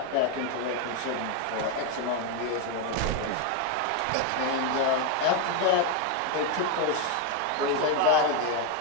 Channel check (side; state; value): both; different; correlation 0.01